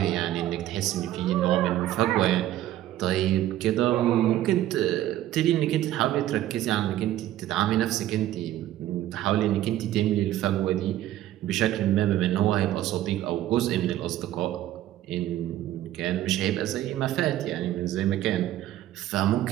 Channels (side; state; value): left; quieter; 13.5 dB